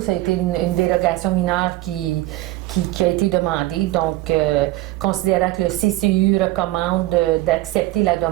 a été une dérogation mineure qui a été demandée. Donc, considérant que le CCU recommande d'accepter la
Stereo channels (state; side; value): quieter; left; 17.0 dB